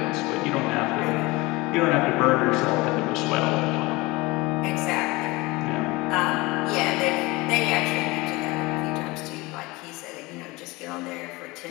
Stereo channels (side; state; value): right; quieter; 22.6 dB